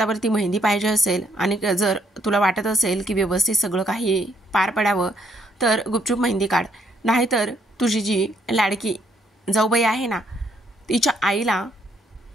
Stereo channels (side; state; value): both; normal; correlation 0.70